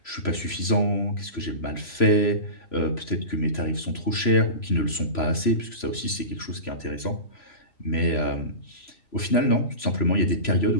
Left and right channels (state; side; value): late; right; 3.0 ms